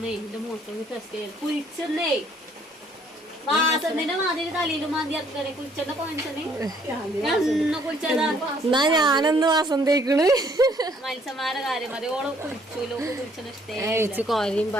എന്റെ മൂത്രം ടെസ്റ്റ് ചെയ്ത് കുഴിച്ചെന്നേ വാസന്റെ മാതിരി തലയിലും മാതി ഇറക്കണേ. കുഴിച്ചെന്ന പോയിച്ചനെ കുഴിച്ചതാ. എന്നാ ഞാനൊന്ന് വാസം തേക്കണ്. മത്സ്യന്മാരുടെ കാര്യം മതി. ഓള് കുഴിച്ചൂലോ, കുഴിച്ചെന്ന് വെച്ച് കോരയും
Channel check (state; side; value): normal; both; correlation 0.64